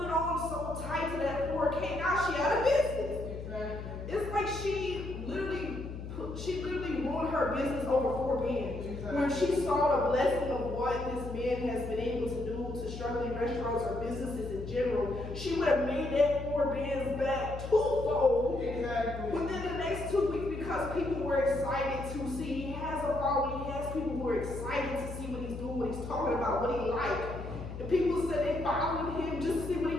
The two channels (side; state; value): left; noise; hum, 8 dB below the sound